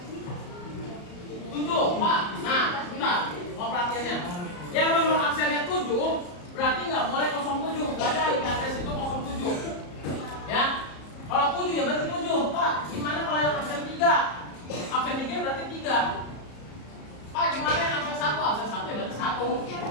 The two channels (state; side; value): late; right; 34 ms